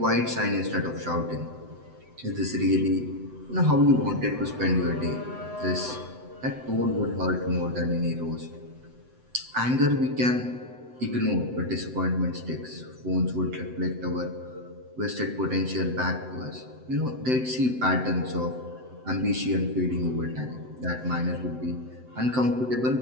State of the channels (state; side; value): late; left; 7.9 ms